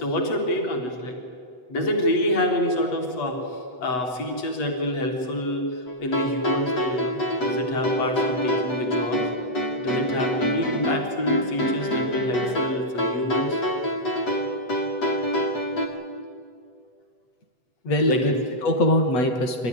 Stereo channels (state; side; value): late; right; 8.0 ms